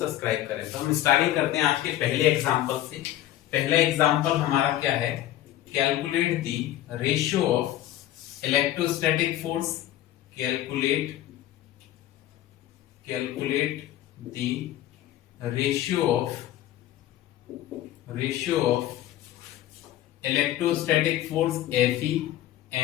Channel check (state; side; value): quieter; right; 13.6 dB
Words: करें। तो हम स्टार्टिंग करते हैं आज के पहले एग्जांपल से। पहला एग्जांपल हमारा क्या है? Calculate the ratio of electrostatic force. Calculate the ratio of electrostatic force Fe